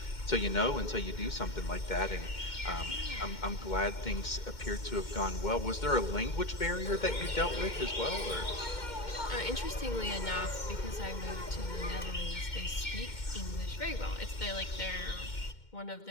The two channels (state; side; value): late; right; 2.1 ms